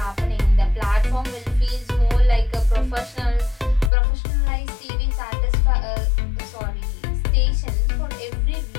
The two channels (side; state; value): right; drops out; at 3.9 s